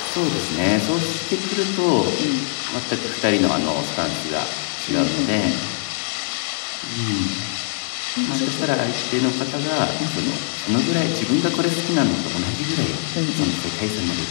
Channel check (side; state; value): right; silent; 64 dB below the other